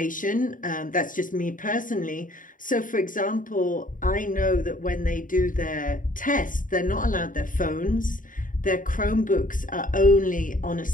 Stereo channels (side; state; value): right; late; 0.39 ms